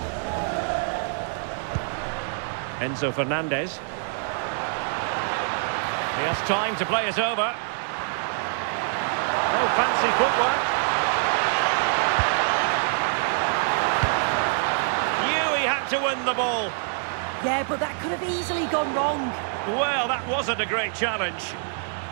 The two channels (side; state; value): left; silent; digital silence